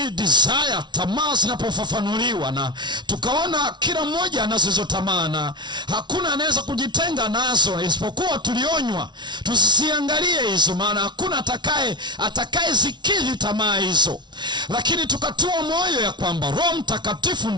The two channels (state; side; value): late; left; 0.21 ms